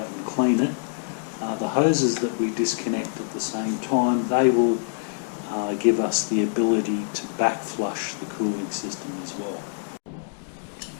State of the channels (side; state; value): right; silent; digital silence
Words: and clean it. The hoses that we disconnect at the same time, they will give us the ability to back flush the cooling system as well.